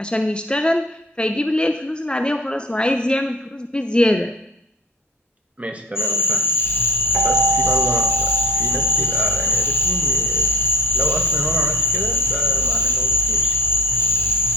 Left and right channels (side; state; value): both; normal; correlation 0.35